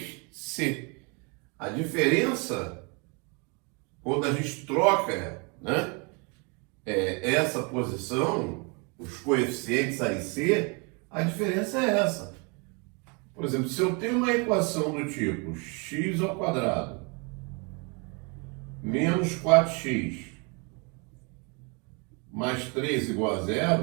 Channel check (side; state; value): left; quieter; 32.4 dB